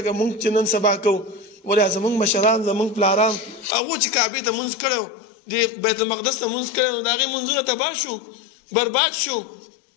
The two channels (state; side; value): drops out; right; at 3.7 s